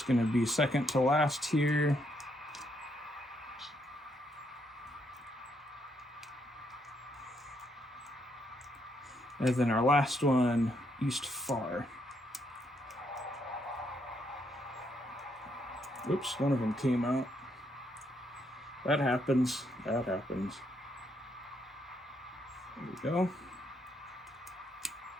going to be second to last here. And then our last one, east far. Oops, one of them came out. That happens. That happens. There we go.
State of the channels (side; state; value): both; normal; correlation 0.75